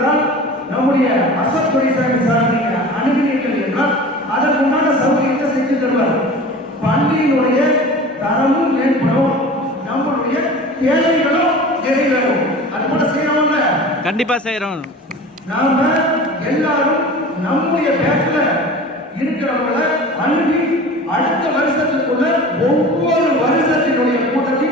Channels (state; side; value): normal; both; correlation 0.38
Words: நம்முடைய அசோக் துரைசாமி சார் நீங்க அணுகினீர்கள் என்றால் அதற்கு உண்டான சௌகரியத்தை செஞ்சு தருவார். பள்ளியினுடைய தரமும் மேம்படும், நம்மளுடைய தேவைகளும் நிறைவேறும். அது போல செய்யறோம்ல, கண்டிப்பா செய்யறோம். நாம எல்லாரும் நம்முடைய பேட்ச்ல இருக்கிறவங்கள அணுகி அடுத்த வருஷத்துக்குள்ள ஒவ்வொரு வருஷத்தினுடைய கூட்டத்தை